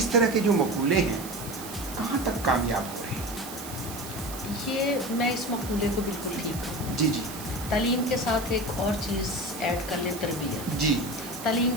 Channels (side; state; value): right; noise; hiss, 12 dB below the sound